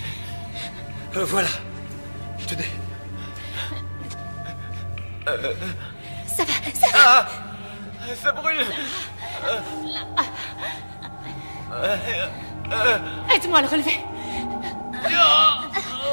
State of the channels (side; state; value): both; inverted; correlation -1.00